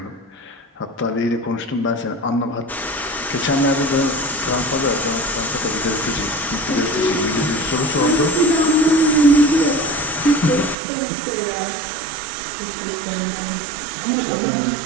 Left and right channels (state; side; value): drops out; left; at 10.8 s